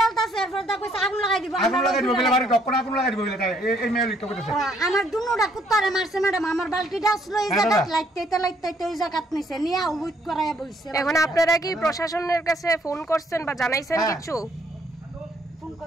আমার দুনোটা কুত্তারে মারছে ম্যাডাম আমার বালতিটা আসলো এই জায়গায় লাইতে ওই জায়গাত নিছে নিয়ে উইট করায়া বইছে এখন আপনারা কি প্রশাসনের কাছে ফোন করছেন বা জানাইছেন কিছু ফোন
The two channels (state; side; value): normal; both; correlation 0.67